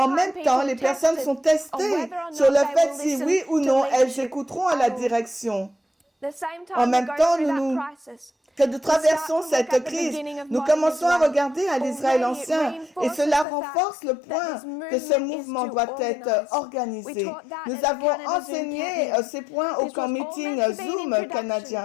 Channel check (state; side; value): drops out; right; at 13.5 s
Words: même temps, les personnes sont testées sur le fait si oui ou non elles écouteront à la direction. En même temps, que nous traversons cette crise, nous commençons à regarder à l'Israël ancien et cela renforce le point que ce mouvement doit être organisé. Nous avons enseigné ces points au camp meeting Zoom